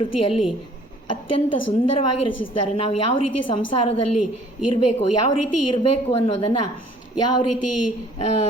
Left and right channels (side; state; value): both; normal; correlation 0.56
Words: ಅತ್ಯಂತ ಸುಂದರವಾಗಿ ರಚಿಸಿದ್ದಾರೆ. ನಾವು ಯಾವ ರೀತಿ ಸಂಸಾರದಲ್ಲಿ ಇರಬೇಕು, ಯಾವ ರೀತಿ ಇರಬೇಕು ಅನ್ನೋದನ್ನು, ಯಾವ ರೀತಿ